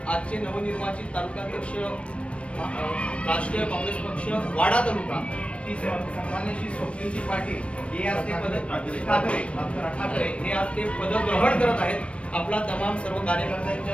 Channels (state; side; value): late; right; 0.061 ms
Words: आजचे नवनिर्वाचित तालुकाध्यक्ष राष्ट्रीय काँग्रेस पक्ष वाडा तालुका ही सन्माननीय श्री स्वप्नीलजी पाटील हे आज ते ठाकरे हे आज ते पदग्रहण करत आहेत। आपला तमाम सर्व